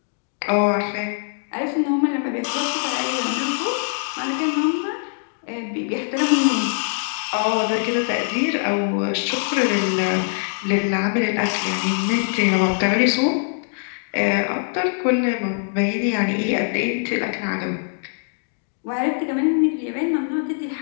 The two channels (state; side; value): silent; right; digital silence